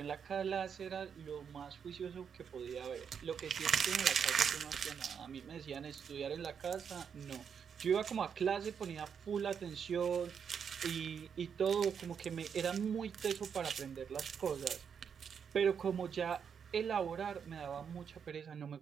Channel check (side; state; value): left; quieter; 7.1 dB